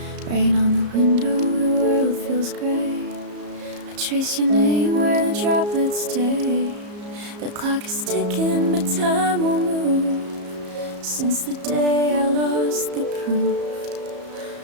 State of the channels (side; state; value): left; late; 34 ms